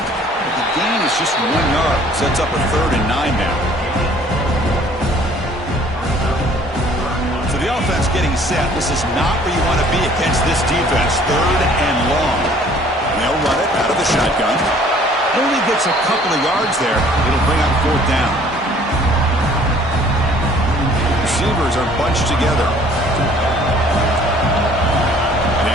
The gain is just 1 yard. Sets up a 3rd and 9 now. So the offense getting set. This is not where you want to be against this defense. 3rd and long. And they'll run it out of the shotgun. Only gets a couple of yards there. It'll bring up 4th down. Receivers are bunched together. And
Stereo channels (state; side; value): normal; both; correlation 0.56